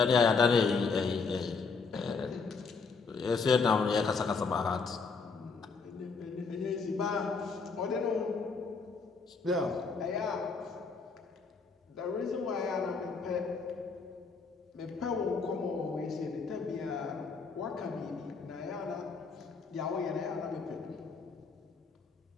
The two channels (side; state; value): right; quieter; 4.8 dB